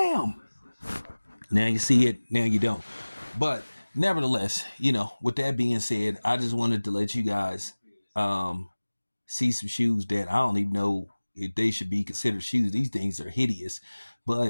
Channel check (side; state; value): both; inverted; correlation -1.00